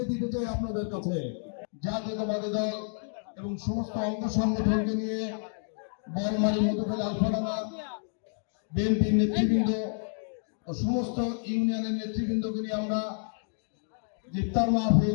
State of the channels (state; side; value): silent; right; digital silence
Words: দিতে চাই আপনাদের কাছে। জাতীয়তাবাদী দল এবং সমস্ত অঙ্গ সংগঠনকে নিয়ে বলমারি, মধুখালী, আলফাডাঙ্গা বিএনপির নেতৃবৃন্দ ও সমস্ত ইউনিয়নের নেতৃবৃন্দকে নিয়ে আমরা ইফতার